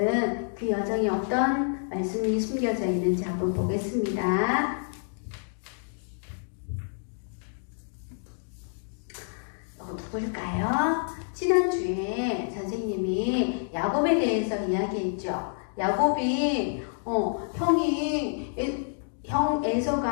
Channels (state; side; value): silent; right; digital silence